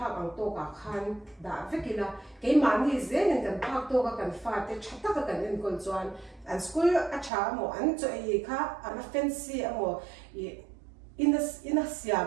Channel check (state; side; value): drops out; left; at 7.3 s